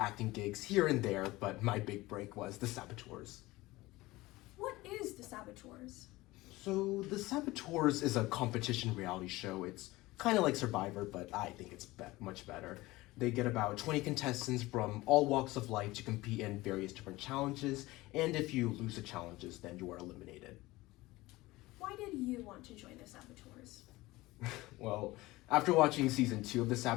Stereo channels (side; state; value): right; quieter; 19.6 dB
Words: gigs here and there, but my big break was The Saboteurs. What is the Saboteurs? So, The Saboteurs is a competition reality show. It's kind of like Survivor, but I think it's much better. They get about 20 contestants from all walks of life to compete in various different challenges, and if you lose the challenges, then you are eliminated. Why did you want to join the Saboteurs? Well, after watching season 2 of The